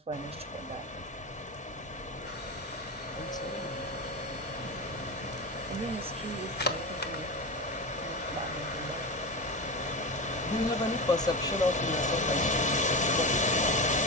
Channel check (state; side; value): normal; both; correlation 0.22